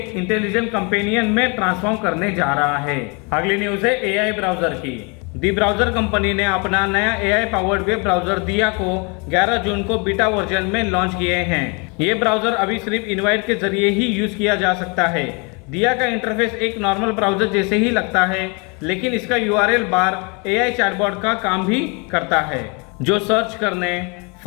इंटेलिजेंट कंपेनियन में ट्रांसफॉर्म करने जा रहा है। अगली न्यूज है AI ब्राउजर की। दी ब्राउजर कंपनी ने अपना नया AI पावर्ड वेब ब्राउजर दिया को 11 जून को बीटा वर्जन में लॉन्च किए हैं। ये ब्राउजर अभी सिर्फ इनवाइट के जरिए ही यूज किया जा सकता है। दिया का इंटरफेस एक नॉर्मल ब्राउजर जैसे ही लगता है, लेकिन इसका URL बार AI चैटबॉट का काम भी करता है, जो सर्च करने,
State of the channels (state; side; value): quieter; right; 32.0 dB